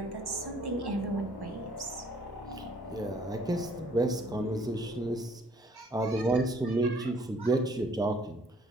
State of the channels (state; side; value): normal; both; correlation 0.60